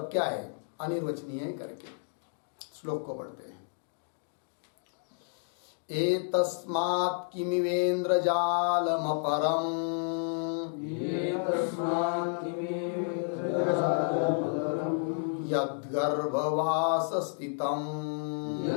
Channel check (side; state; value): right; silent; digital silence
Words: क्या है, अनिर्वचनीय है करके। श्लोक को पढ़ते हैं। एतस्मात् किमिवेन्द्रजालमपरम् यद्गर्भवासस्थितम्